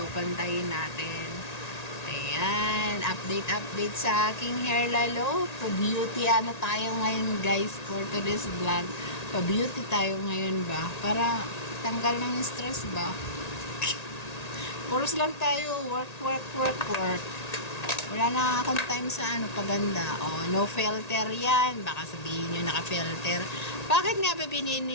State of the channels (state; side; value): late; right; 1.8 ms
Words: pantayin natin. Ayan, update sa aking hair lalo. Pa-beauty tayo ngayon guys for today's vlog. Pa-beauty tayo ngayon ba? Para tanggal ng stress ba? Puros lang tayo. Work. Wala na akong time sa paganda. No filter yan. Baka sabihin nyo naka-filter. Bakit nga ba